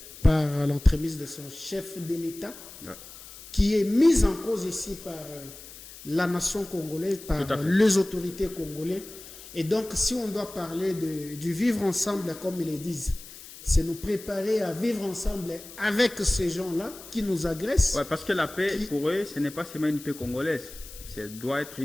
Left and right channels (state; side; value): noise; left; hiss, 16 dB below the sound